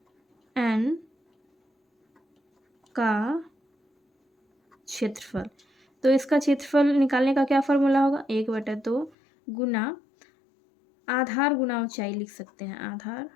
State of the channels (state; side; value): drops out; right; at 9.1 s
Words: एन का क्षेत्रफल। तो इसका क्षेत्रफल निकालने का क्या फॉर्मूला होगा, 1/2 गुना आधार गुना ऊंचाई लिख सकते हैं, आधार